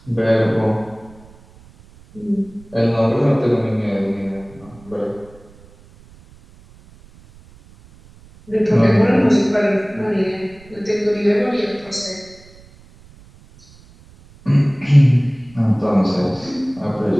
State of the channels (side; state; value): right; noise; rumble, 25 dB below the sound